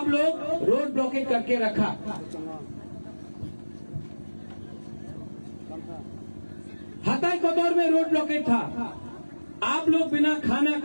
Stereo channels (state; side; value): inverted; both; correlation -1.00